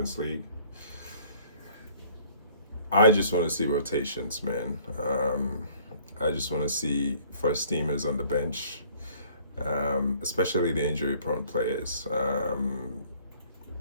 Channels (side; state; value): both; inverted; correlation -0.56